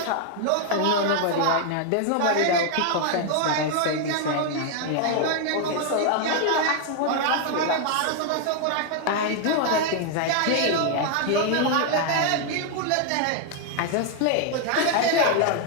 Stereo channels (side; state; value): both; different; correlation 0.00